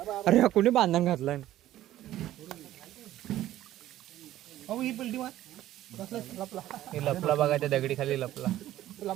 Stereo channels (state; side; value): quieter; left; 13.7 dB